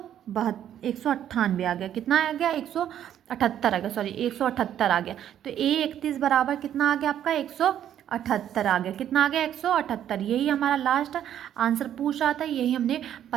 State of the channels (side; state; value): left; quieter; 10.5 dB